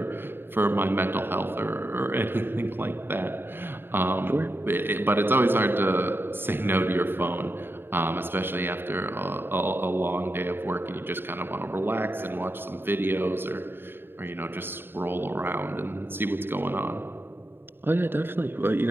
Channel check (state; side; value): late; left; 0.10 ms